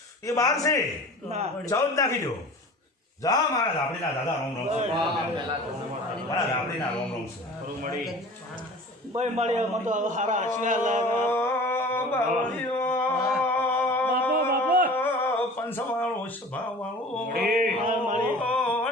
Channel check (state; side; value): normal; both; correlation 0.41